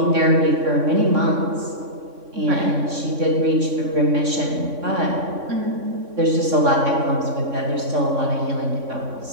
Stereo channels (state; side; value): late; left; 3.6 ms